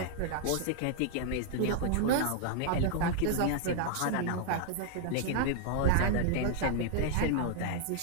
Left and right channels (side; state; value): both; different; correlation -0.01